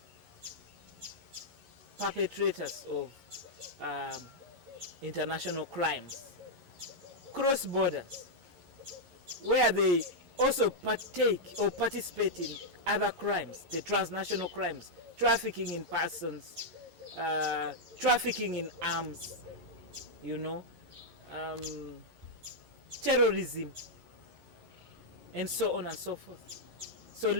perpetrators of international crimes cross borders, where they also partake or participate in other crimes, the transnational crimes, trafficking in persons, trafficking in arms, terrorism, and so on and so forth. So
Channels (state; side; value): late; left; 11 ms